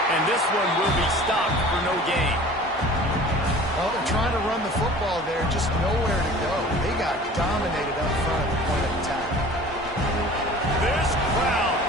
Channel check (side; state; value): both; normal; correlation 0.44